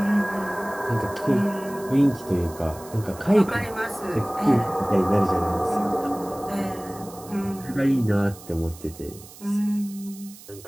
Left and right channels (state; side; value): noise; right; hiss, 19 dB below the sound